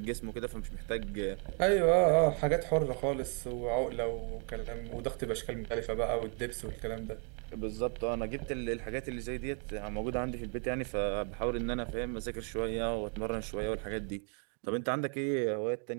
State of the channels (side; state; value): left; quieter; 39.1 dB